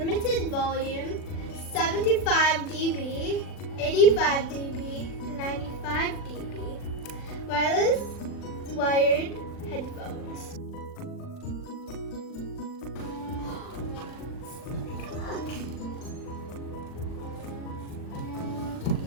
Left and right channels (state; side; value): late; right; 40 ms